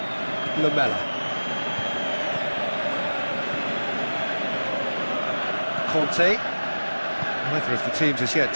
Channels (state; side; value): inverted; both; correlation -1.00